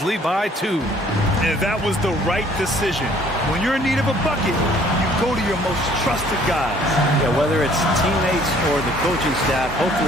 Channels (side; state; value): both; normal; correlation 0.58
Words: lead by 2. And that was the right decision. When you're in need of a bucket, you go to your most trusted guys. Yeah, whether it's teammates or the coaching staff,